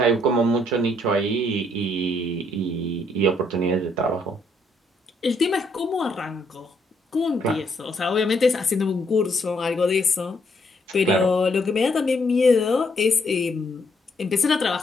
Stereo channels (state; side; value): normal; both; correlation 0.71